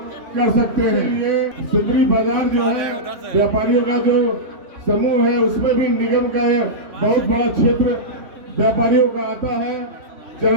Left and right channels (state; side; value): late; left; 3.0 ms